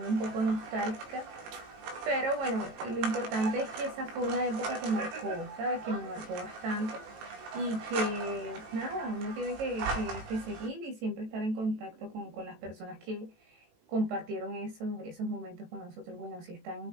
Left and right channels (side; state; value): left; late; 18 ms